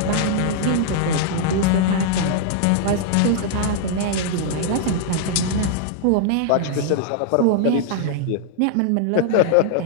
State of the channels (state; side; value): different; both; correlation -0.01